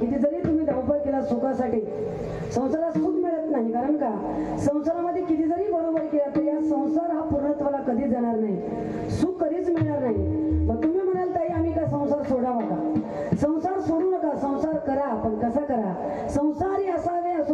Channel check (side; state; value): both; identical; correlation 1.00